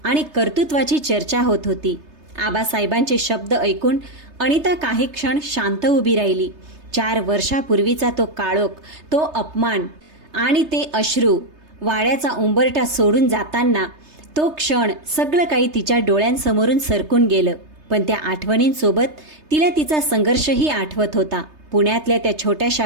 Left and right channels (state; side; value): late; left; 3.3 ms